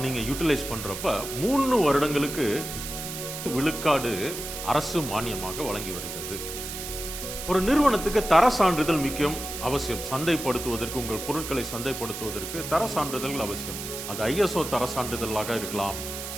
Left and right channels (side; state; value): right; noise; hiss, 7 dB below the sound